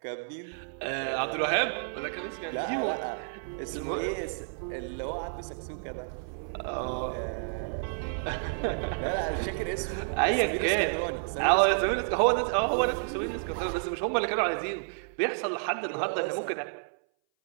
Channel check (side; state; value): left; silent; 57 dB below the other